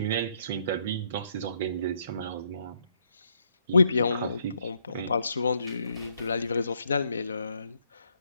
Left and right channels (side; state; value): both; inverted; correlation -0.73